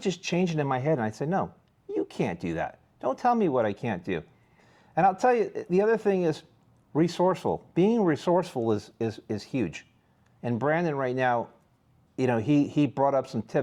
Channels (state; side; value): identical; both; correlation 1.00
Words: just change it in my head and I'd say, no, you can't do that. Don't tell me what I can't do. And I'll tell you, the other thing is resourceful. Being resourceful is huge. And Brandon right now, he brought up some